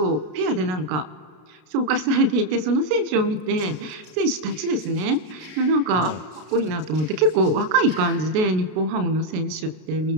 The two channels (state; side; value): late; left; 33 ms